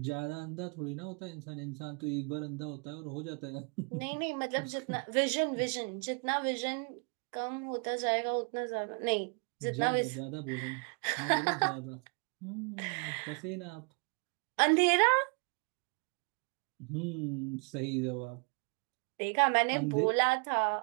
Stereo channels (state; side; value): quieter; left; 36.4 dB